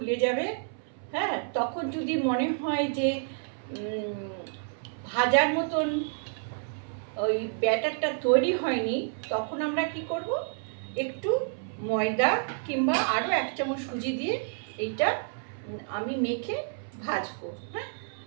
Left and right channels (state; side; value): silent; left; 58 dB below the other